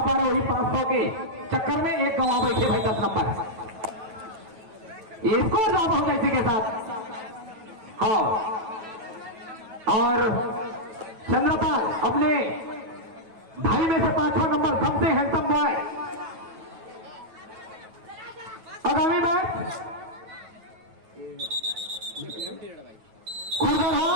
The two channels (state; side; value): late; left; 9.1 ms